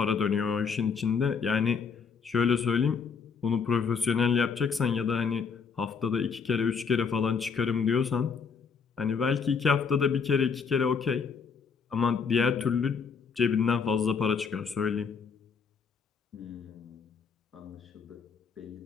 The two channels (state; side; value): quieter; right; 5.8 dB